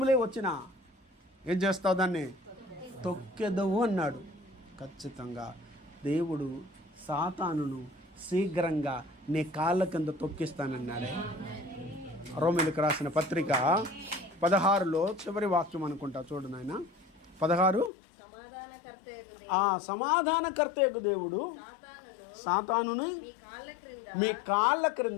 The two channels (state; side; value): drops out; right; at 17.9 s